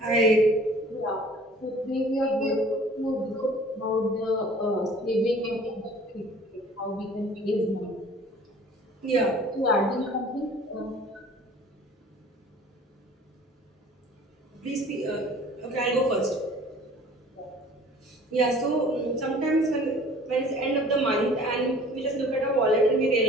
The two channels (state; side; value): normal; both; correlation 0.49